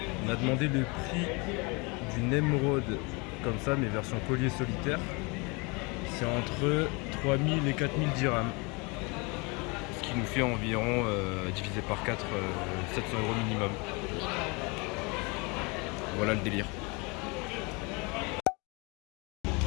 On a demandé le prix d'une émeraude comme ça mais version collier solitaire. C'est entre 3000 et 4000 dirhams. Ce qui nous fait environ divisé par 4 700 € minimum. Voilà le délire.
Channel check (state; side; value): quieter; right; 28.8 dB